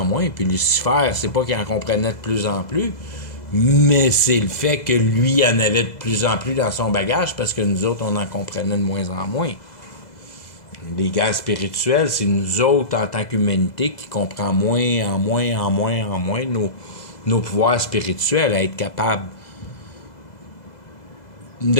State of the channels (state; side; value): late; right; 2.0 ms